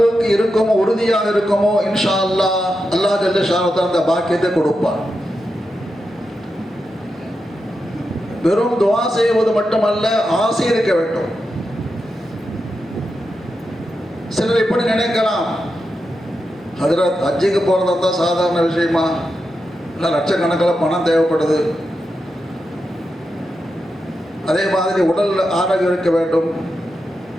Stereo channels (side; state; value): both; normal; correlation 0.88